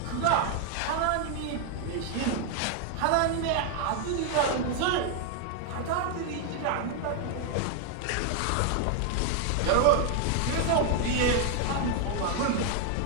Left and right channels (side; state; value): both; different; correlation 0.00